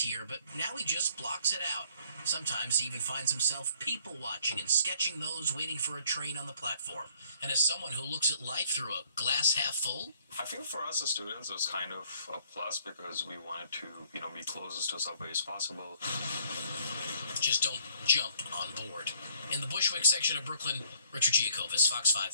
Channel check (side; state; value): both; inverted; correlation -0.62